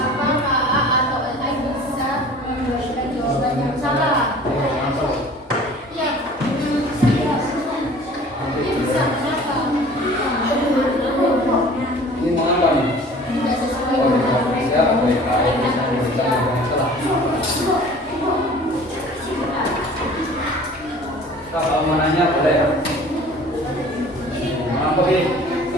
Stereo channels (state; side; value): normal; both; correlation 0.46